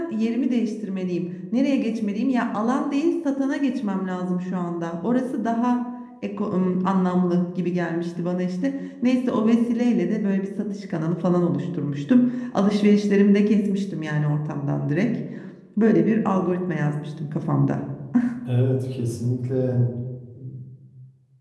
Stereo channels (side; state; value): both; identical; correlation 1.00